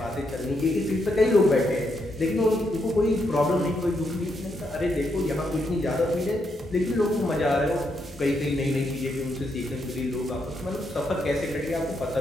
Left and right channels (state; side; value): normal; both; correlation 0.79